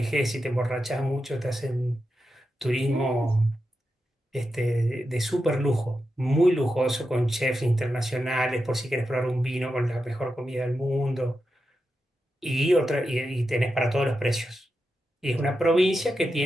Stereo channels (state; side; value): normal; both; correlation 0.88